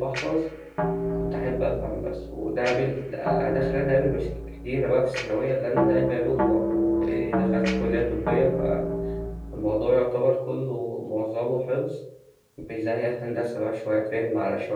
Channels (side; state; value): both; identical; correlation 1.00